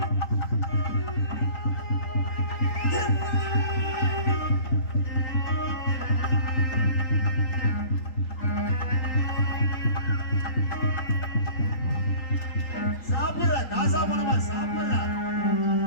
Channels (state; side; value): late; right; 3.8 ms